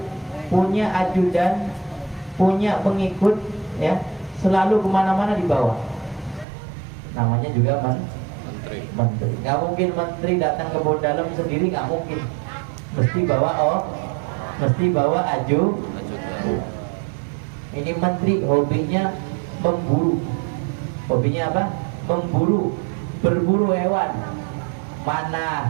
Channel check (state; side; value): drops out; left; at 6.5 s